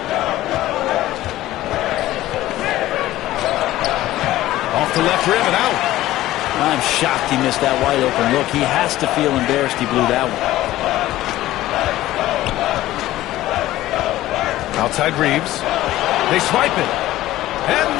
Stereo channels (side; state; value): right; quieter; 15.4 dB